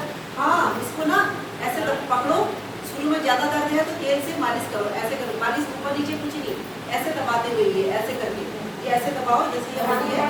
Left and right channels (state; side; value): identical; both; correlation 1.00